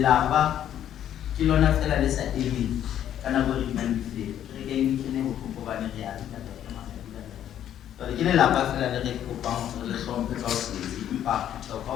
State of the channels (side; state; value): right; quieter; 10.7 dB